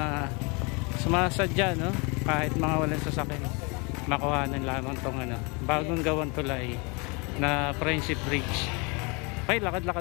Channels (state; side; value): quieter; right; 30.4 dB